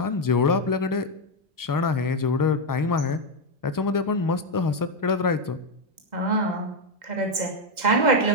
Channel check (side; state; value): left; late; 2.0 ms